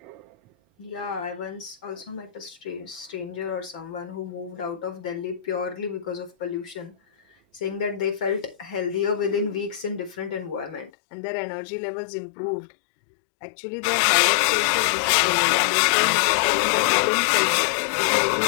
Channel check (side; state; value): right; drops out; at 10.9 s